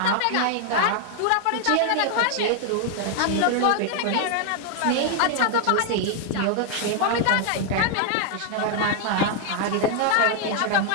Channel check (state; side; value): different; both; correlation 0.00